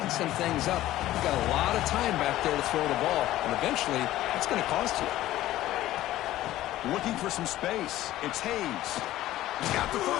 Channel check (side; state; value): right; quieter; 14.8 dB